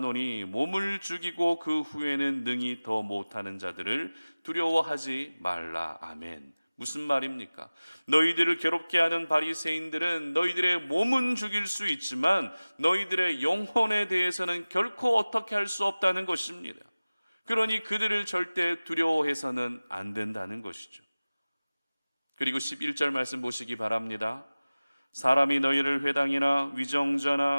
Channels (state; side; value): inverted; both; correlation -0.99